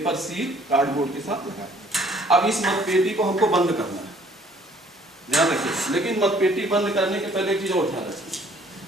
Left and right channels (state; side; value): normal; both; correlation 0.59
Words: सील कार्डबोर्ड के साथ लगा दिया। अब इस मतपेटी को हमको बंद करना है, ध्यान रखिए। लेकिन मतपेटी बंद करने के पहले एक चीज और ध्यान रखिए,